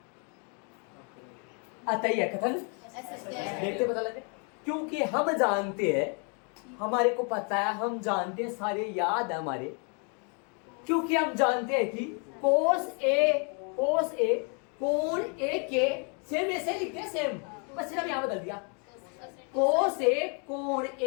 आता ही है कथन, देखते पता लगे। क्योंकि हम जानते हैं, हमारे को पता है, हम जानते हैं, सारे याद है हमारे। क्योंकि हम जानते हैं कि कोस ए कोण ए के सेम ऐसे लिखते हैं, सेम, बस सिर्फ यहां बदल दिया। कोस ए कोण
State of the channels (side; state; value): right; quieter; 37.2 dB